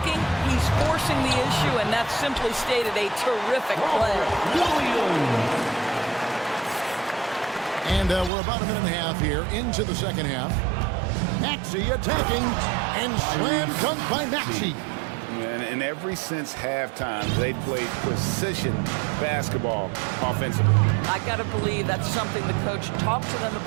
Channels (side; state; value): left; drops out; at 8.3 s